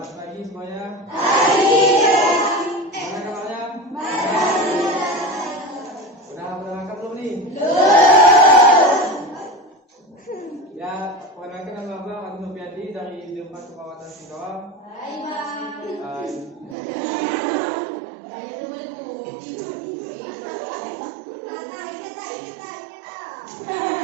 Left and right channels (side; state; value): left; drops out; at 16.8 s